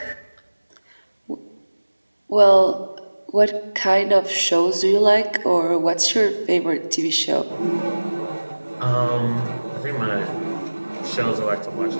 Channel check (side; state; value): both; inverted; correlation -1.00